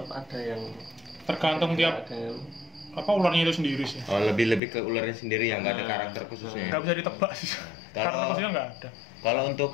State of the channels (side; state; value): right; drops out; at 4.6 s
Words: ada yang tergantung tiap apa ularnya itu sendiri sih. Oh, lebih ke ularnya sendiri yang nggak ada karakter khususnya. Nggak bisa ditebak sih. Karakter khususnya nggak ada. Kalau untuk